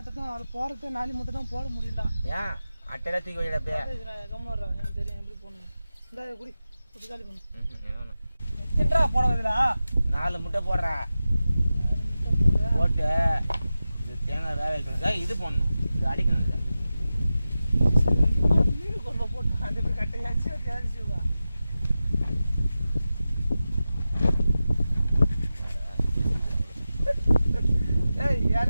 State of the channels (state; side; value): inverted; both; correlation -0.93